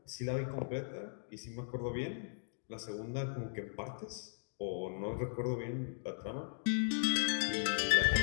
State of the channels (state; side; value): silent; right; digital silence